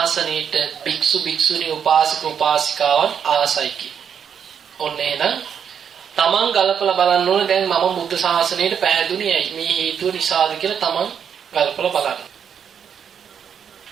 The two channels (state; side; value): quieter; left; 7.8 dB